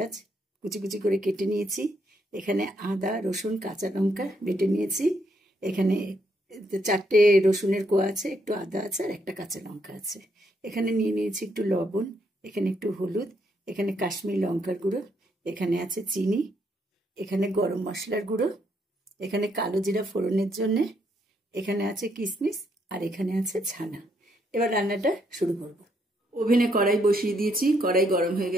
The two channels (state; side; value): normal; both; correlation 0.74